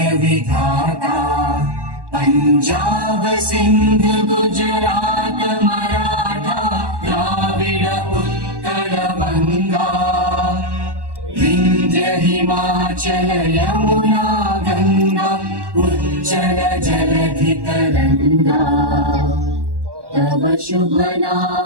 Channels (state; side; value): late; left; 1.1 ms